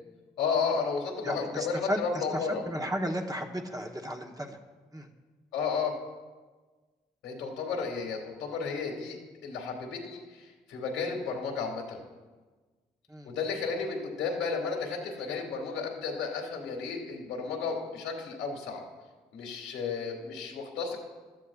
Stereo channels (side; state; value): right; quieter; 3.9 dB